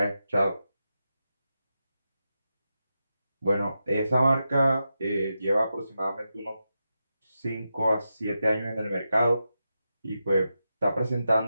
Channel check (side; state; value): both; inverted; correlation -0.89